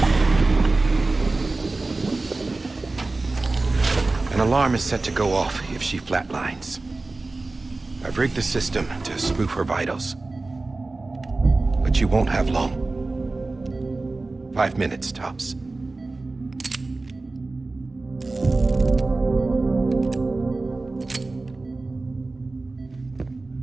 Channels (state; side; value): quieter; left; 3.3 dB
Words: An alarm is set to go off if she flatlines. I've rigged the system to spoof her vitals. But you won't have long. 5 minutes, tops.